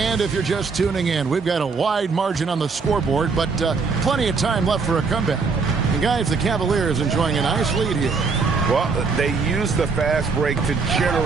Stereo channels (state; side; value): quieter; left; 4.8 dB